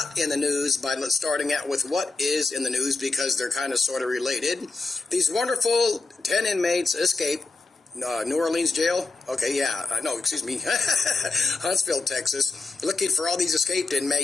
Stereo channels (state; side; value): quieter; right; 3.7 dB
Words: in the news by starting out with what is in the news because they're kind of sort of related. These wonderful 10 inmates escaped New Orleans jail. Okay, yeah, no, excuse me, Huntsville, Texas. Looking for all these escaped